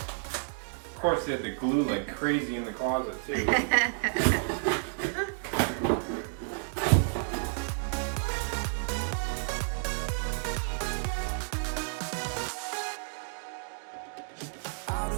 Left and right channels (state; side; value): silent; left; digital silence